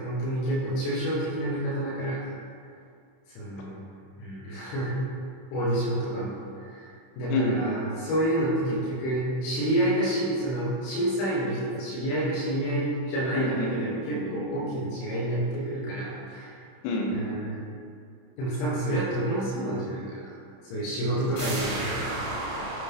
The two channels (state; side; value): late; right; 31 ms